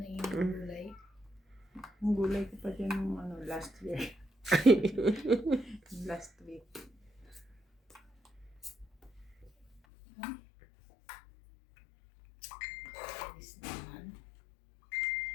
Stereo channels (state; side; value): drops out; right; at 9.8 s